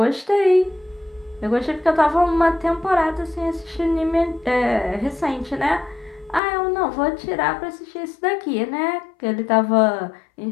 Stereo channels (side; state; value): right; drops out; at 6.4 s